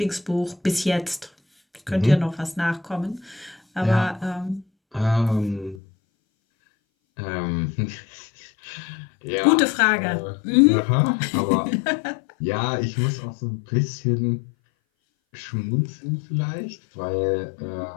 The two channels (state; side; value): drops out; right; at 5.8 s